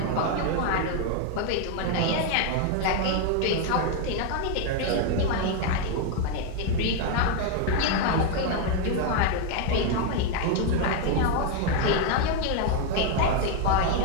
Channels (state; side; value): different; both; correlation 0.01